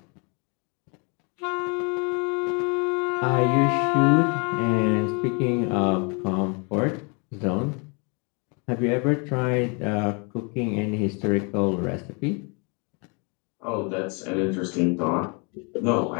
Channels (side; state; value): right; quieter; 33.5 dB